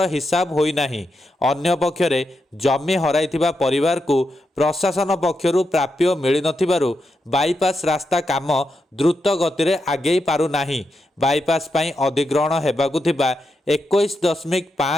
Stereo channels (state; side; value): normal; both; correlation 0.85